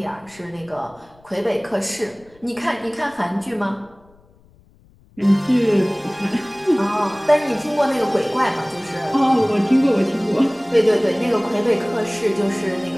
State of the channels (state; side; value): noise; left; rumble, 29 dB below the sound